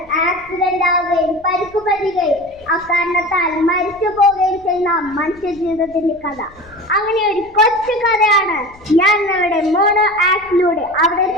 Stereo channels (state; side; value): noise; left; rumble, 26 dB below the sound